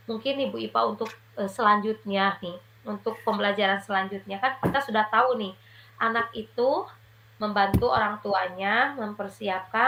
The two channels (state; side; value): identical; both; correlation 1.00